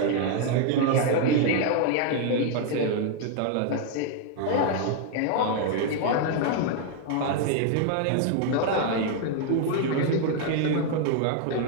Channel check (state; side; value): different; both; correlation 0.00